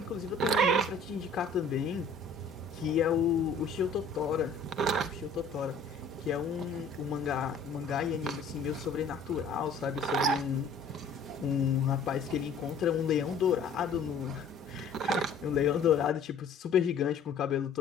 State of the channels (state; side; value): quieter; right; 4.0 dB